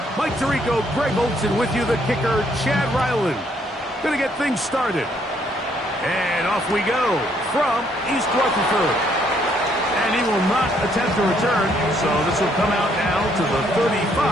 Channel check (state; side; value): normal; both; correlation 0.69